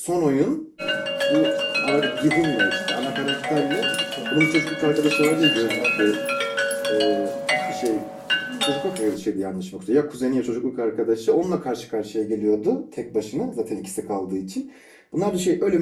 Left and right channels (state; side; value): identical; both; correlation 1.00